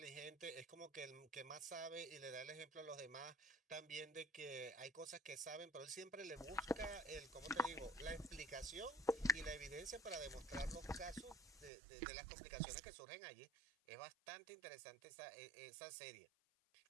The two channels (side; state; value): left; drops out; at 11.7 s